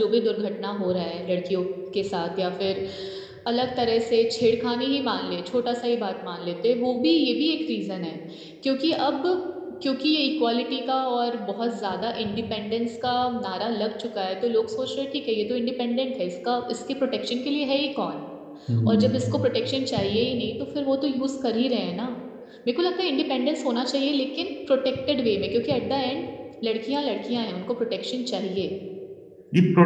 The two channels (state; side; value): identical; both; correlation 1.00